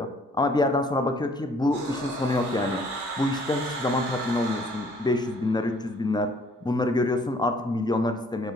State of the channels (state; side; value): normal; both; correlation 0.59